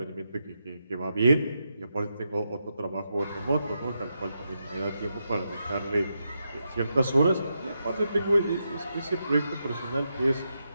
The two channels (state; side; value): inverted; both; correlation -0.85